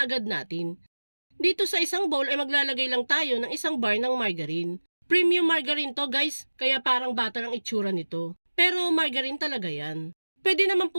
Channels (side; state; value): both; inverted; correlation -1.00